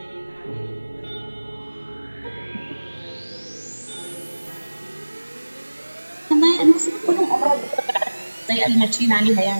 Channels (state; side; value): inverted; both; correlation -1.00